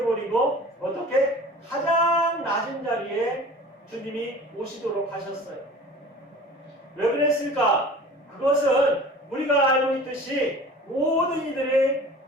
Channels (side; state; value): both; normal; correlation 0.42